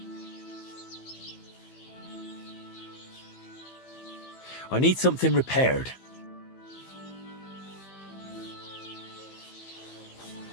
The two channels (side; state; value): right; late; 15 ms